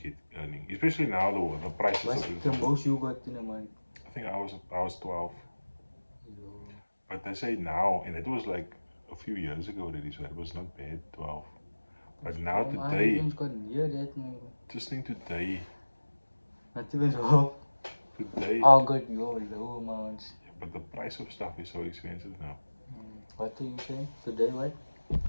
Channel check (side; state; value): both; inverted; correlation -1.00